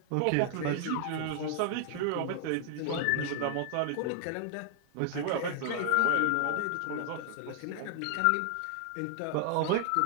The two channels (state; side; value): different; both; correlation 0.00